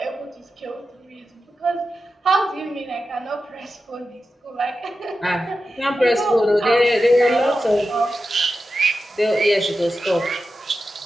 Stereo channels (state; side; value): normal; both; correlation 0.91